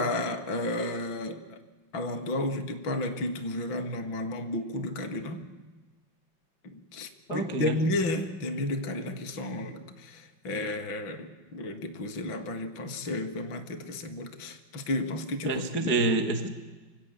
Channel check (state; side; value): late; right; 5.9 ms